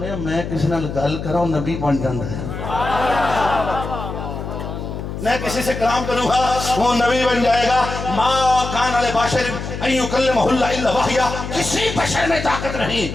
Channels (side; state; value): left; noise; hum, 7 dB below the sound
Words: میں کسی نال گل کراں نبی بن جاندا ہے, میں کسی سے کلام کروں گا وہ نبی بن جائے گا. ما کان علی بشر ان یکلمہ اللہ الا وحیا, کسی بشر میں طاقت